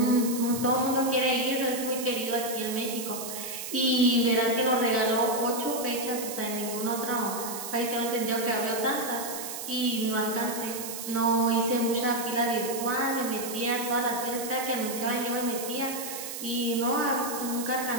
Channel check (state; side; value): noise; right; hiss, 7 dB below the sound